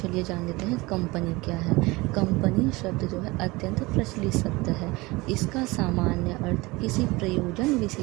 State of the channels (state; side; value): quieter; left; 22.6 dB